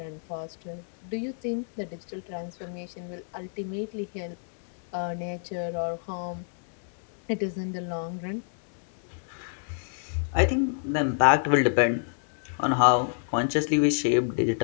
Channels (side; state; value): right; silent; digital silence